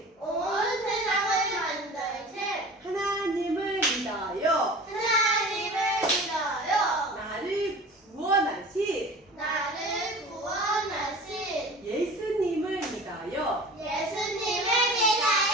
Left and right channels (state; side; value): normal; both; correlation 0.39